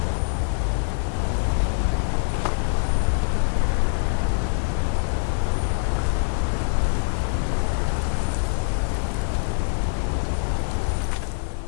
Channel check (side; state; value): right; silent; 63 dB below the other